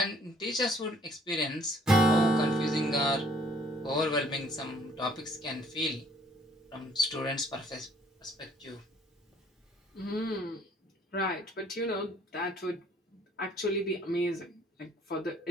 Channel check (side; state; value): both; normal; correlation 0.60